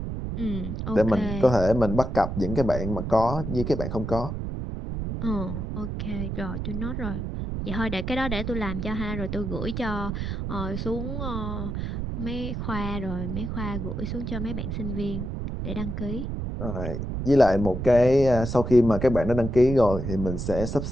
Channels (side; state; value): right; noise; rumble, 4 dB below the sound